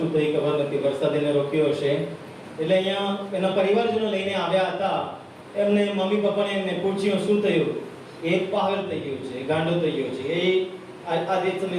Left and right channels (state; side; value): identical; both; correlation 1.00